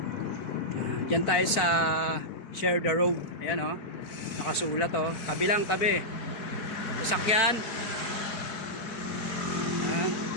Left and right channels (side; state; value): right; late; 4.4 ms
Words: Ayan, dyan tayo sa Share the Road. Ayan o, nakasulat o, tabi lang, tabi. Sasakyan. Ayan,